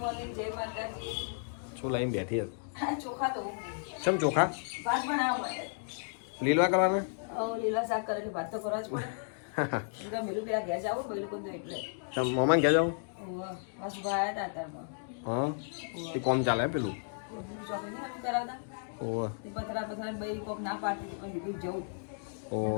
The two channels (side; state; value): right; silent; digital silence